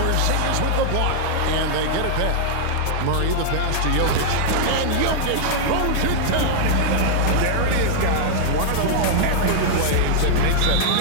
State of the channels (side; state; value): both; different; correlation -0.01